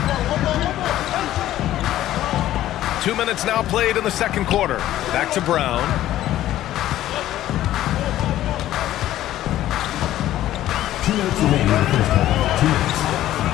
2 minutes now played in the second quarter. Back to Brown.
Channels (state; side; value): quieter; right; 13.6 dB